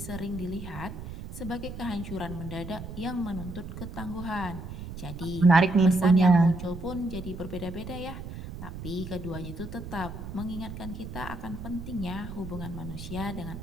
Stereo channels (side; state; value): right; noise; rumble, 9 dB below the sound